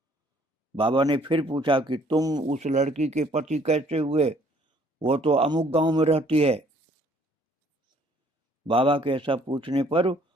बाबा ने फिर पूछा कि तुम उस लड़की के पति कैसे हुए? वो तो अमुक गांव में रहती है। बाबा के ऐसा पूछने पर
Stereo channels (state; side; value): normal; both; correlation 0.61